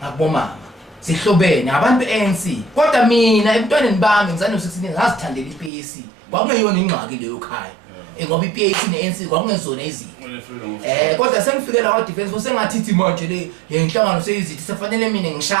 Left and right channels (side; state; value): left; drops out; at 5.7 s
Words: ngakubomama sihlobene abantu beANC kodwa mina emntwaneni bami ngizane no16 ngazithandela iPAC kwakungeyona ingxaki leyo ekhaya ngoba iPAC neANC kwakungezona izinto kodwa sengifikela kwa defense force sengathithi manje le inhlangano seyizithi sefanele mina